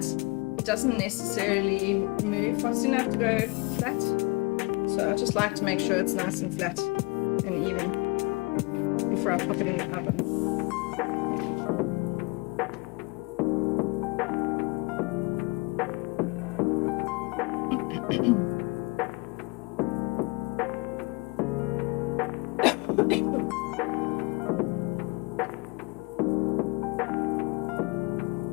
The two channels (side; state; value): right; quieter; 27.1 dB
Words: It doesn't necessarily move fast enough to go flat. So I just like to make sure it's nice and flat and even before I pop it in the oven.